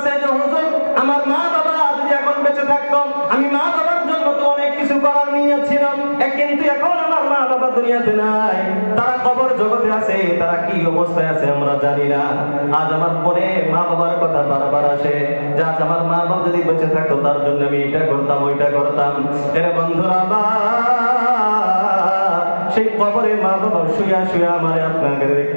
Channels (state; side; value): inverted; both; correlation -1.00